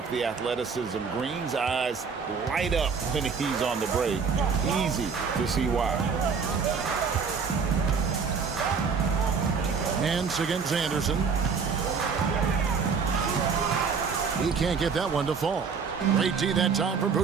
the athleticism. Green's eyes light up when he's on the break. Easy to see why. Nance against Anderson. He can't get that one to fall. Great D that time from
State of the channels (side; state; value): left; quieter; 5.6 dB